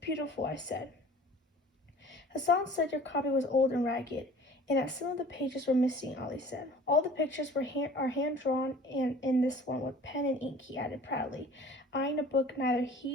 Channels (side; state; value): both; normal; correlation 0.47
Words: I said. "Hassan said your copy was old and ragged, and that some of the pages were missing," Ollie said. "All the pictures are hand-drawn, and in this one with pen and ink," he added proudly, eyeing a book neither